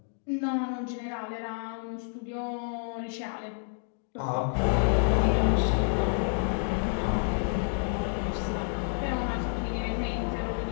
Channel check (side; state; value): right; silent; 58 dB below the other